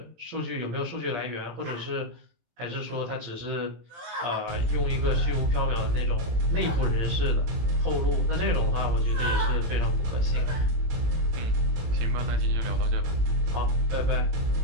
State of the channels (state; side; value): late; left; 18 ms